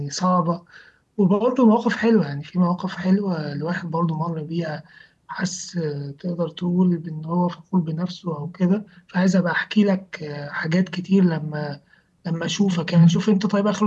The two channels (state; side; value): identical; both; correlation 1.00